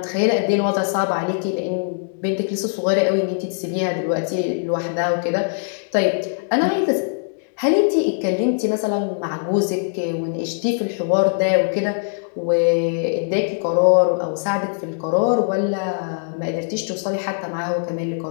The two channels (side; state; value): right; silent; digital silence